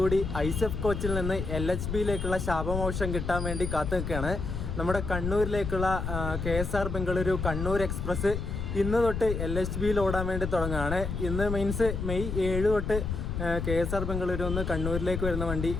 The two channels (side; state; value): left; noise; rumble, 4 dB below the sound